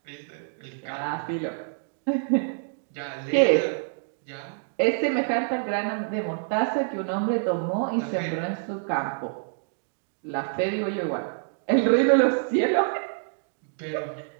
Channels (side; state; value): left; silent; digital silence